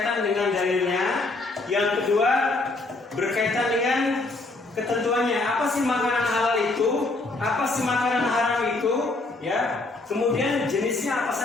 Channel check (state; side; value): quieter; right; 3.2 dB